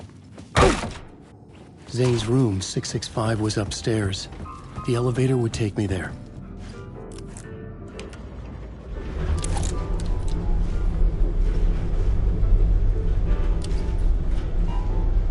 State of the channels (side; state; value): both; identical; correlation 1.00